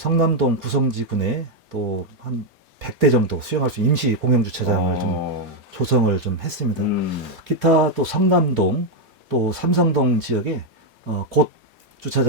구성지군에 또 한 100대 정도 수용할 수 있는 임시 공영 주차장을 좀 조성을 좀 했습니다. 기타 또 성남동 또 삼성동 지역에 곧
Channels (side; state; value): both; normal; correlation 0.02